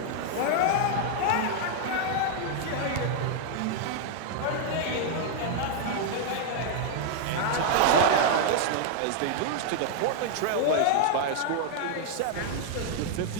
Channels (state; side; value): different; both; correlation 0.00